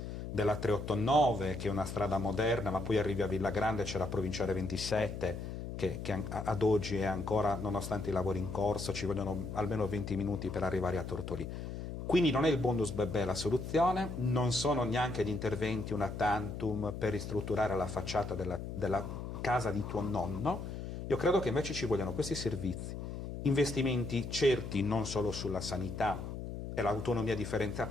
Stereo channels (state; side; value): noise; left; hum, 7 dB below the sound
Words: della 389, che è una strada moderna, ma poi arrivi a Villagrande, c'è la provinciale 27, che ad oggi è ancora, nonostante i lavori in corso, ci vogliono almeno 20 minuti per arrivare a Tortolì. Quindi non è il bonus bebè la soluzione, non sono neanche gli interventi una tantum per ristrutturare la facciata della casa di tuo nonno. Io credo che invece ci vogliano questi servizi, investimenti certi non solo sulla sanità, e l'autonomia